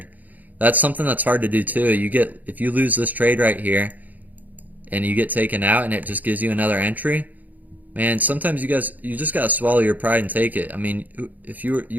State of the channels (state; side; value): late; left; 0.081 ms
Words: That's something that's hard to do too. If you lose this trade right here and you get taken out and it just gives you another entry, man, sometimes you just gotta swallow your pride and take it. I mean, if you